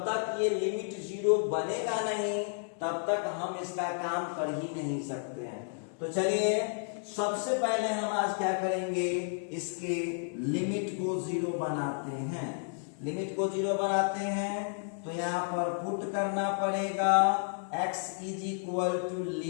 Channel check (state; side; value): silent; right; 57 dB below the other